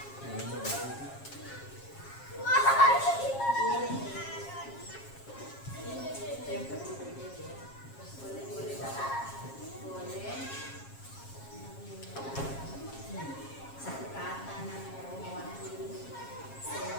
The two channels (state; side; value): late; right; 7.4 ms